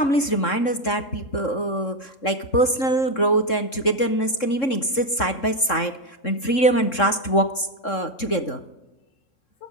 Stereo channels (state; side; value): late; right; 3.7 ms